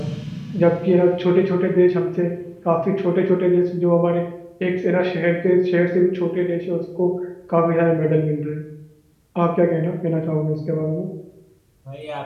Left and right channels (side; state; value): both; identical; correlation 1.00